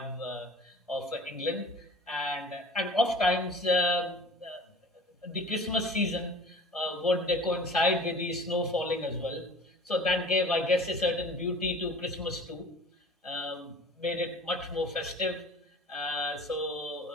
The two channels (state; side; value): normal; both; correlation 0.43